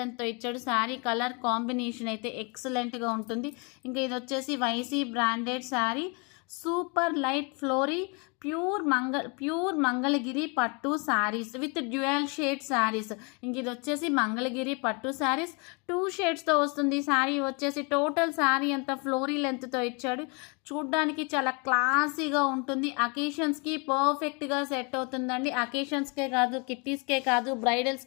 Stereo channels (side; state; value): right; quieter; 32.5 dB